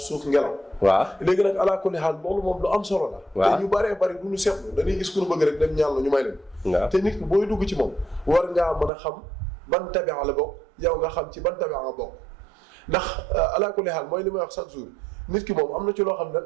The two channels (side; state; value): left; drops out; at 8.9 s